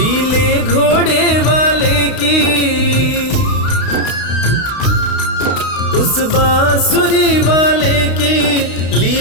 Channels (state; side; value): late; right; 32 ms